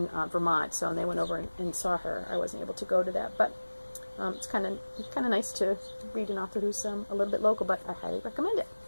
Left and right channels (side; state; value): both; inverted; correlation -1.00